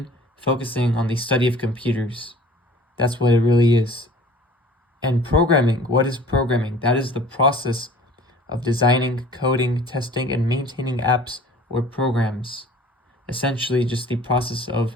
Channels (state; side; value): normal; both; correlation 0.47